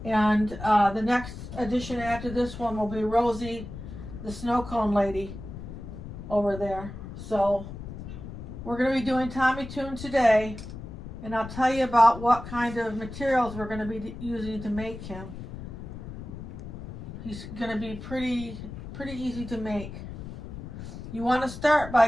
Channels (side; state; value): left; noise; rumble, 11 dB below the sound